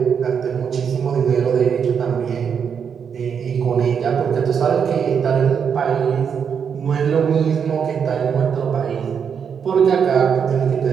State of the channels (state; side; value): quieter; left; 7.1 dB